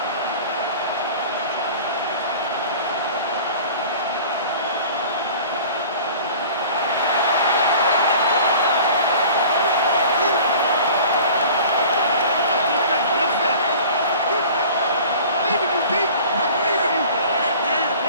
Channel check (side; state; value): both; inverted; correlation -0.43